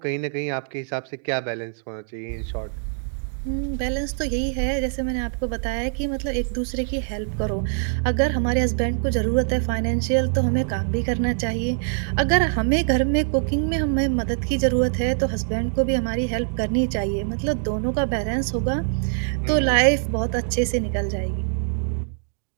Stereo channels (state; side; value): silent; left; 63 dB below the other